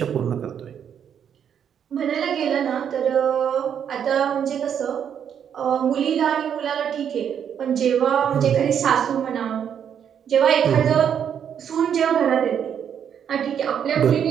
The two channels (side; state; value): left; quieter; 8.5 dB